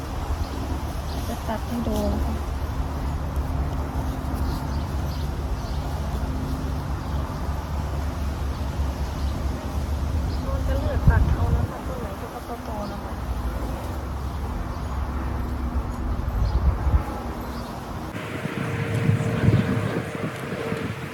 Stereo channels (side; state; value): both; identical; correlation 1.00